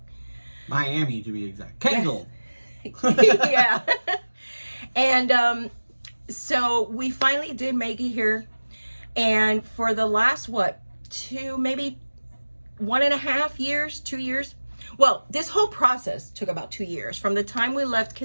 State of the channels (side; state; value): both; inverted; correlation -1.00